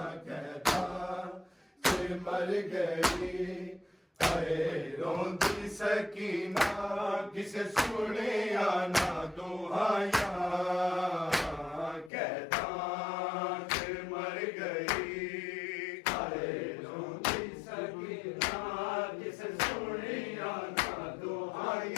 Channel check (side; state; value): right; drops out; at 12.1 s